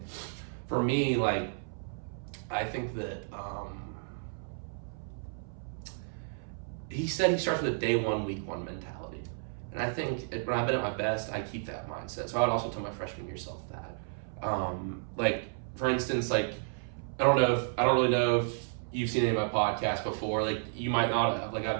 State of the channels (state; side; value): silent; left; 56 dB below the other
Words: for me, like, I think that he said he starts with a day one, week one mentality. And I think when I've been at my best, I keep that mindset. So I would also tell my freshman year self that. Like, for instance, like, I don't really know if you've seen any of my podcasts before. Like, you might not have. Like,